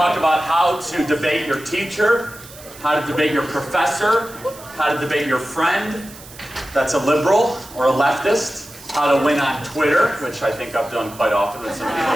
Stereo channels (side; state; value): right; noise; hiss, 18 dB below the sound